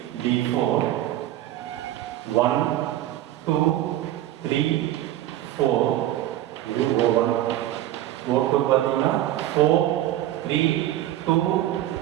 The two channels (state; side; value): quieter; left; 13.6 dB